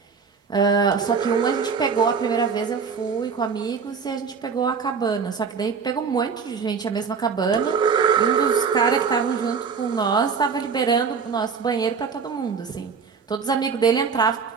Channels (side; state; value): left; quieter; 5.8 dB